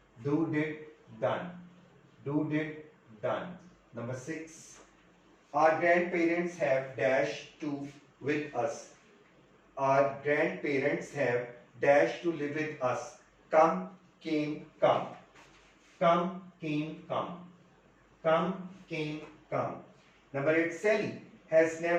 do, did, done. Do, did, done. Number 6. Our grandparents have dash to with us. Our grandparents have dash to live with us. Come, came, come. Come, came, come. Come, came, come. Number 8. Sally has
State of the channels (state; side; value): identical; both; correlation 1.00